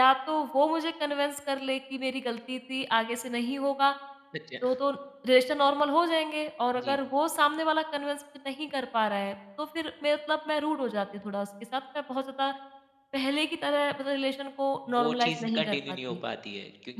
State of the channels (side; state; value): both; identical; correlation 1.00